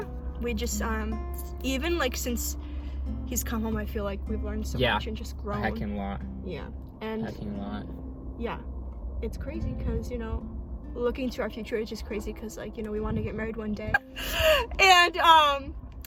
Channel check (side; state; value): both; identical; correlation 1.00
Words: we just even like since he's come home, I feel like we've learned so much and just grown. A heckin' lot. Yeah. And heckin' lot. Yeah, it's crazy because, you know, looking to our future is just crazy because, like, you know, we want to get married one day. And